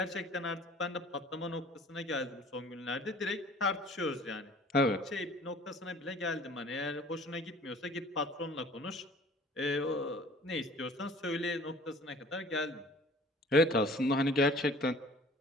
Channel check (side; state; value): both; normal; correlation 0.49